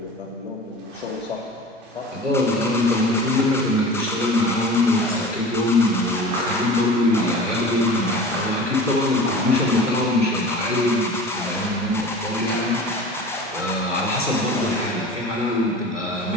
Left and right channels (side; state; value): both; normal; correlation 0.37